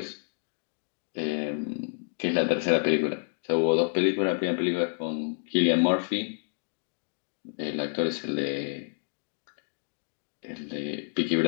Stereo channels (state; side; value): silent; right; digital silence